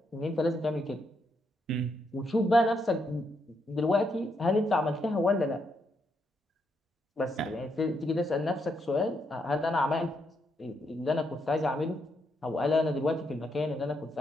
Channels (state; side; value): normal; both; correlation 0.78